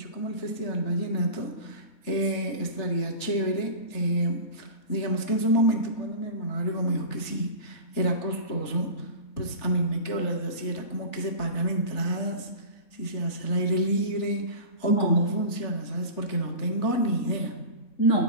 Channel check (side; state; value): right; late; 3.4 ms